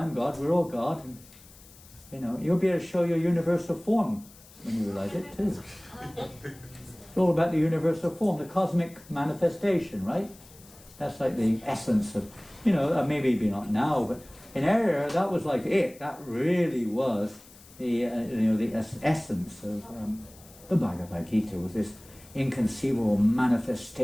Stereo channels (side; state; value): left; noise; hiss, 23 dB below the sound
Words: God, we're all God. And, you'll be able to show your universal form when you realize it too. It's all about the universal form, the cosmic manifestation, right? That's like the essence of, maybe not now, but in our era, that was like it. That really was the essence of the Bhagavad Gita, was this inconceivable